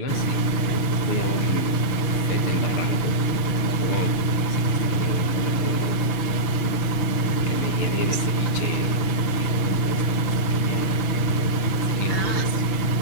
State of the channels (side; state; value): right; late; 6.5 ms